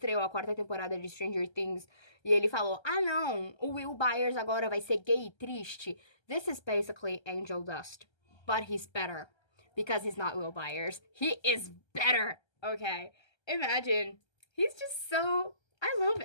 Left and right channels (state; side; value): late; right; 1.3 ms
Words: a 4ª temporada de Stranger Things e ele falou, ah não, o Will Byers agora vai ser gay e triste? This is basically Angel Dust, but he's better. Because he's not Will Byers. He is better. Okay. Imagine. He's just so... I